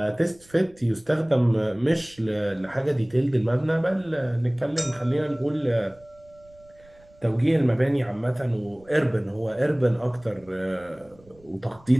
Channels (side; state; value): right; noise; rumble, 28 dB below the sound